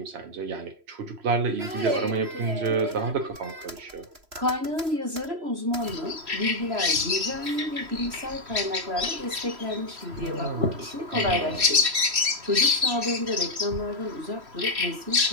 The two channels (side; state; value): left; late; 3.0 ms